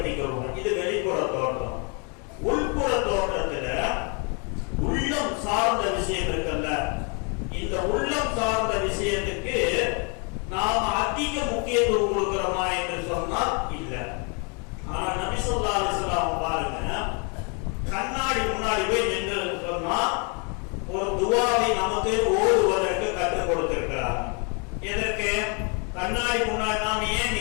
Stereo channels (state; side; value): quieter; right; 35.4 dB